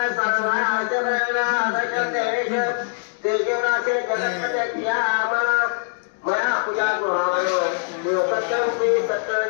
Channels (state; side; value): silent; right; digital silence